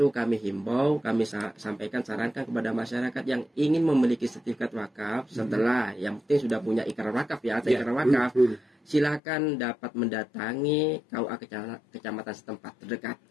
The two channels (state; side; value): drops out; right; at 9.2 s